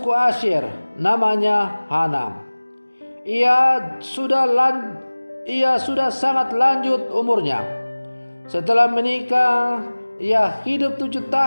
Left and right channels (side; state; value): both; inverted; correlation -1.00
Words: Asyer, namanya Hana. Ia sudah sangat lanjut umurnya. Setelah menikah, ia hidup 7